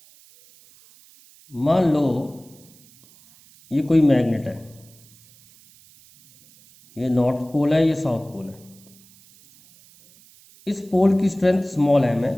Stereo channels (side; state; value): right; noise; hiss, 27 dB below the sound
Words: मान लो ये कोई मैग्नेट है, ये नॉर्थ पोल है, ये साउथ पोल है। इस पोल की स्ट्रेंथ स्मॉल एम है,